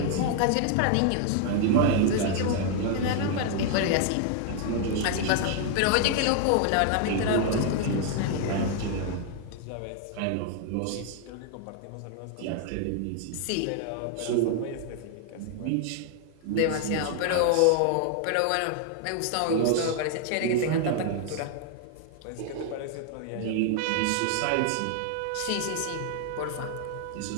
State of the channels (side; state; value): both; different; correlation 0.00